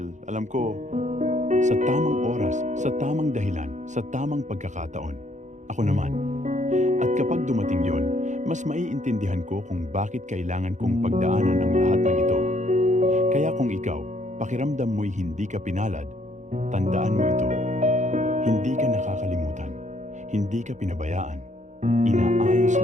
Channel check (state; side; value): late; left; 0.35 ms